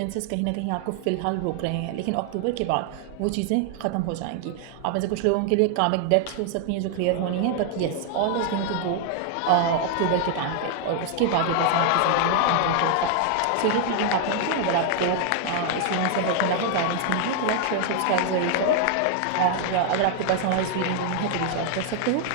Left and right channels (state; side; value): different; both; correlation 0.00